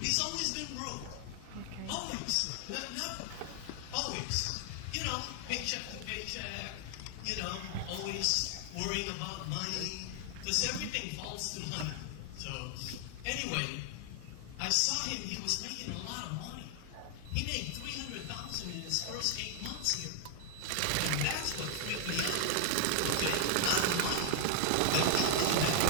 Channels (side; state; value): both; different; correlation 0.00